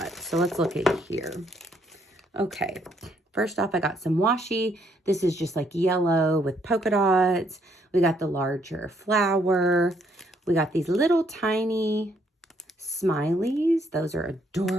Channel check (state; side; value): normal; both; correlation 0.70